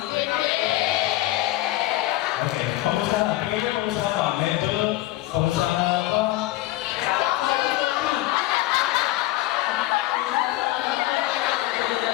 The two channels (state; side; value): quieter; right; 17.0 dB